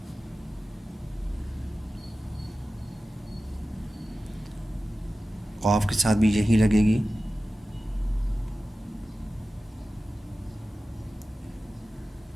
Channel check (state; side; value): normal; both; correlation 0.95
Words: क़ाफ के साथ भी यही लगेगी।